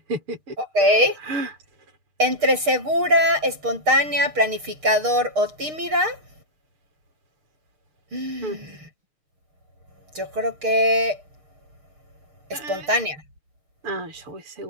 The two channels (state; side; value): late; left; 6.6 ms